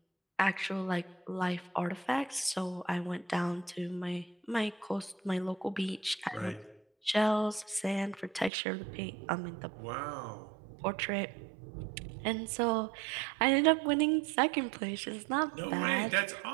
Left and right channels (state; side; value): drops out; left; at 8.5 s